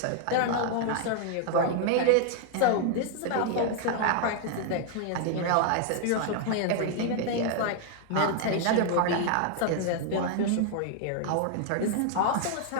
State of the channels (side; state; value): both; different; correlation 0.00